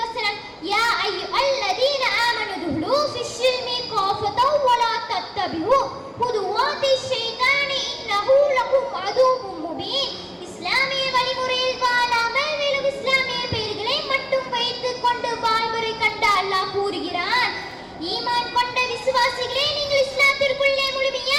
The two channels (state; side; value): identical; both; correlation 1.00